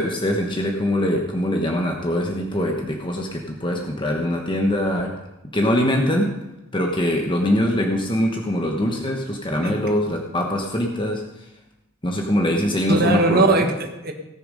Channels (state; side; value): normal; both; correlation 0.56